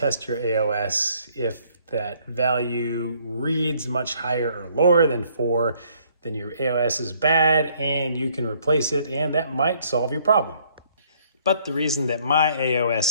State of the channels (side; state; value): both; inverted; correlation -0.63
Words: your AOS. If that value reads much higher or lower than 4, then your AOS is bad and you can replace it, and that might solve your problem. But the reason that my